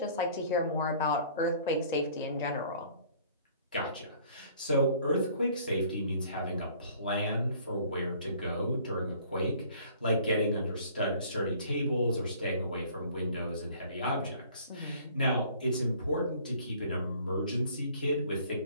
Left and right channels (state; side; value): inverted; both; correlation -0.55